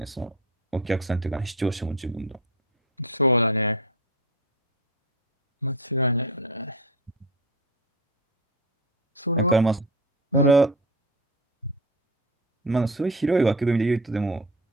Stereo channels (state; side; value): normal; both; correlation 0.27